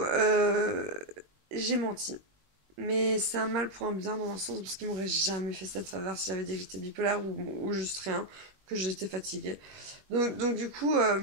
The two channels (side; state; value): left; late; 21 ms